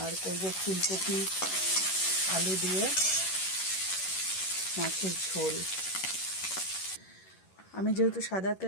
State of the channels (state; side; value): late; right; 11 ms